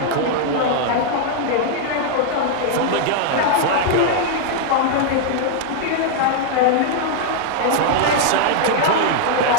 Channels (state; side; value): different; both; correlation 0.00